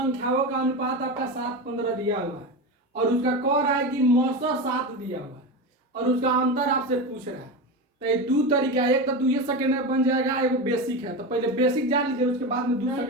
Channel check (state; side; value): normal; both; correlation 0.21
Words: का अनुपात आपका 7:15 दिया हुआ है और उसका कह रहा है कि मौसा 7 दिया हुआ है और उसका अंतर आपसे पूछ रहा है। तो ये दो तरीका है, एक तो 2 सेकंड में बन जाएगा, एगो बेसिक है। तो पहले बेसिक जान लीजिए, उसके बाद में 2